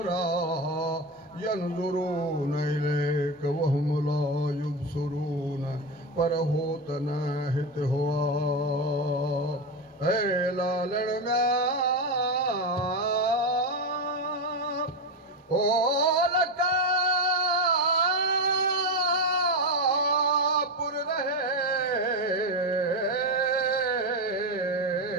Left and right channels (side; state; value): both; normal; correlation 0.14